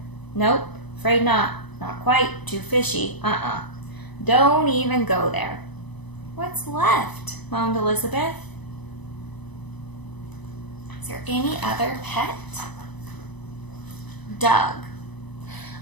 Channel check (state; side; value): late; right; 1.0 ms